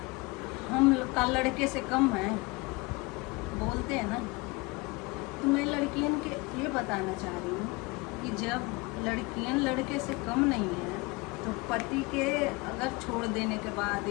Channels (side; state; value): right; quieter; 25.5 dB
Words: हम का लड़के से कम है, बोलते हैं ना, तो मैं लड़कियों के ये बताना चाह रही हूँ कि जब लड़कियां लड़के से कम नहीं है, तो पति के अगर छोड़ देने के बाद